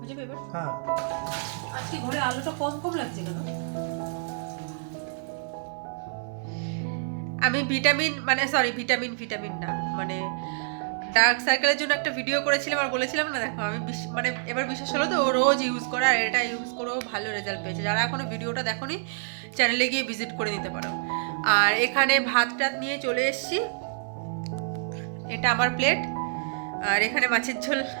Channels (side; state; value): left; silent; 56 dB below the other